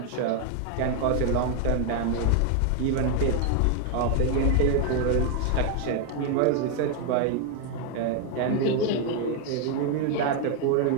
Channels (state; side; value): different; both; correlation 0.01